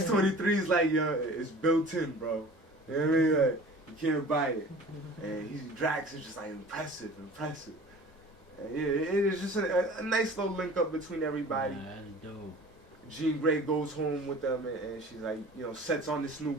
like, yo, it's built in, bro. You know what I mean? Like, you can't buy it. And Drax is just like, impressive. And it is just a nice little link up between everybody. That's dope. Jean Grey goes home with them, and she's like, you know, sets on this new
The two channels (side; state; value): both; normal; correlation 0.43